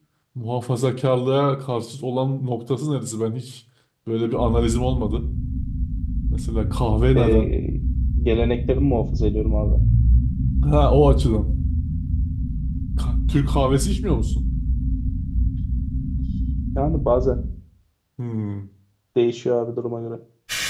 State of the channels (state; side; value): identical; both; correlation 1.00